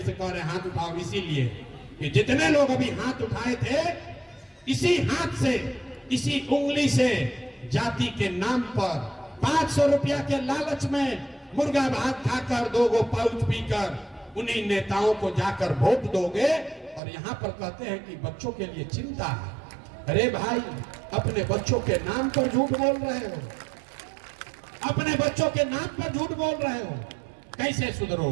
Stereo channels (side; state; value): left; drops out; at 17.0 s